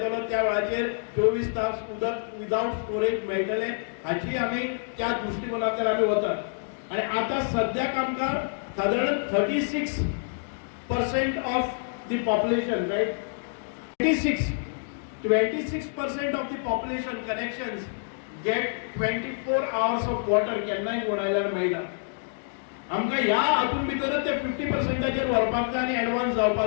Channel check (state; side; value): silent; right; digital silence